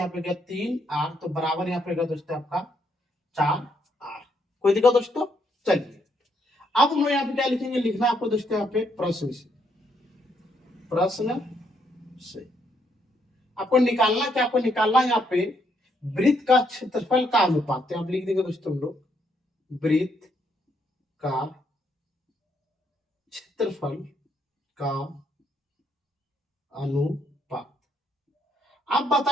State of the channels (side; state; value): both; normal; correlation 0.74